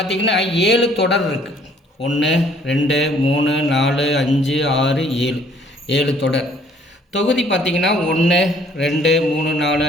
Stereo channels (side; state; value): both; normal; correlation 0.60